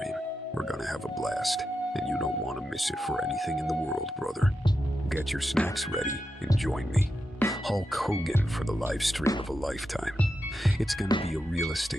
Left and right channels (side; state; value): both; normal; correlation 0.88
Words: We're gonna have a blast, and you don't want to miss it for anything in the world, brother. Get your snacks ready and join me, Hulk Hogan, for the live stream of a lifetime. It's gonna be a real